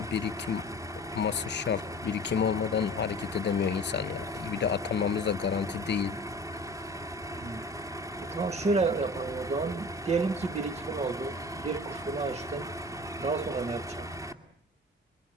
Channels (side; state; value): both; normal; correlation 0.40